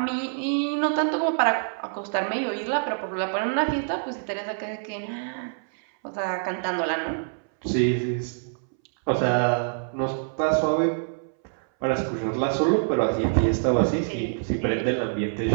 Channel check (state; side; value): silent; left; 61 dB below the other